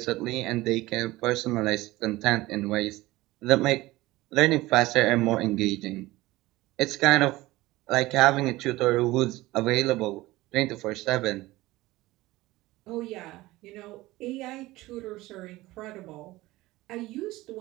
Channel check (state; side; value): quieter; left; 18.8 dB